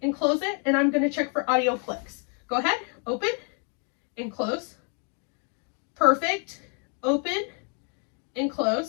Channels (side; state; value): right; quieter; 39.8 dB